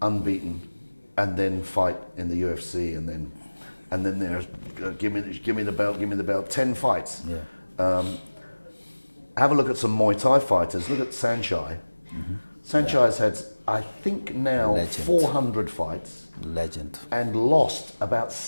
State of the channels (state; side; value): inverted; both; correlation -1.00